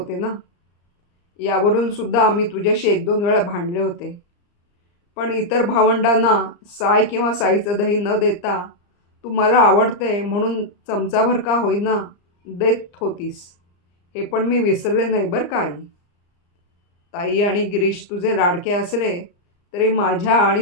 ना. यावरून सुद्धा आम्ही तुझ्याशी 1-2 वेळा भांडले होते. पण इतर भावंडांना साय किंवा साईचं दही न देता तू मला आवडते म्हणून चमचाभर का होईना देत होतीस, हे पण मी विसरले नाही बरं का आई. ताई आणि गिरीश तुझे लाडके असले तरी माझ्या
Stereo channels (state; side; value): late; right; 34 ms